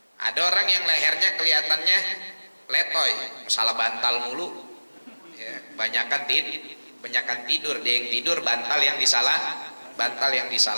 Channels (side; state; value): both; inverted; correlation -1.00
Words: Ada orang yang lehernya kelihatannya letoy, masalah bantal mulu ya, banyakan tidur, dia yang tidur, bantal yang